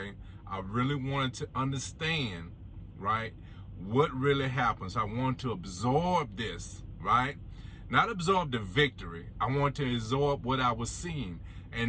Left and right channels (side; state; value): both; identical; correlation 1.00